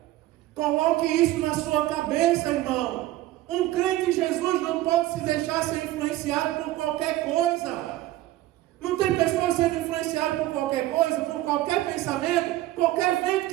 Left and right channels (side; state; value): left; quieter; 15.8 dB